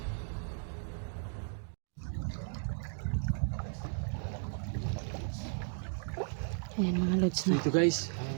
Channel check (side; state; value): left; silent; 54 dB below the other